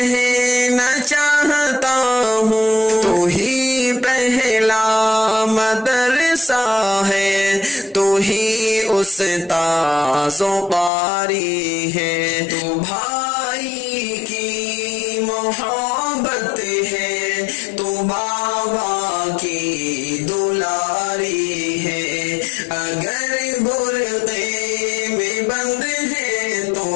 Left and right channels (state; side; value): drops out; right; at 10.9 s